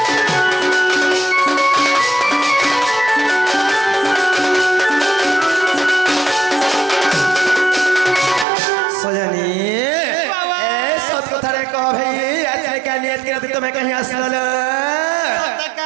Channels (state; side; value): drops out; left; at 8.5 s